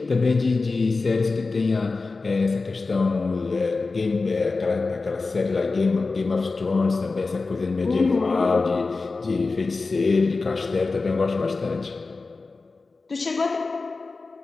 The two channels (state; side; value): quieter; right; 3.9 dB